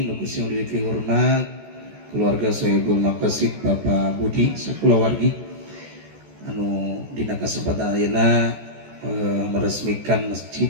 nuku sing diri hormat keluarga Sohibul Maqasid Bapak Budi sakulawargi anu dina kasempatan ayeuna meresmikan masjid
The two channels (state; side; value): late; left; 14 ms